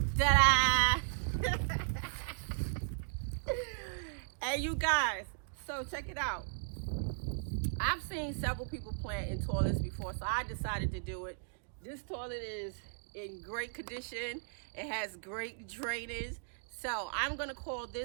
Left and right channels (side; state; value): left; silent; digital silence